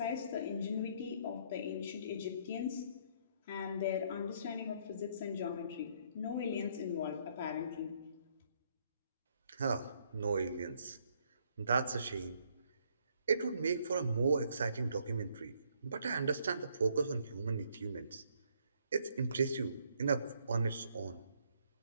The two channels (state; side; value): inverted; both; correlation -0.69